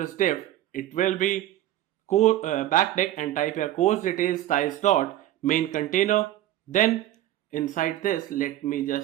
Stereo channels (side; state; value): left; quieter; 13.6 dB